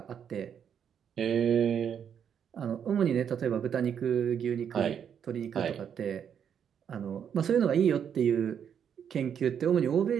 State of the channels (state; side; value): quieter; left; 8.2 dB